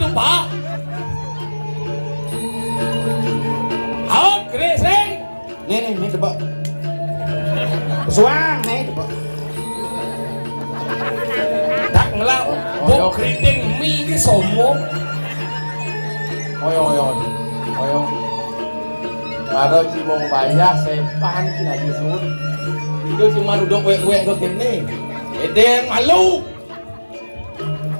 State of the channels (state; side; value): inverted; both; correlation -1.00